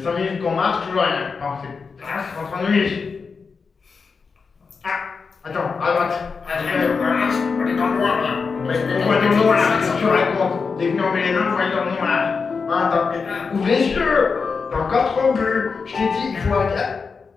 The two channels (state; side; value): quieter; right; 5.1 dB